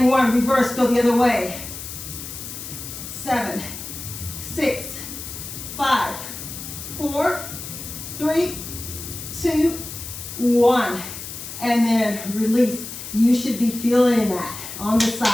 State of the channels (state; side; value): noise; left; hiss, 10 dB below the sound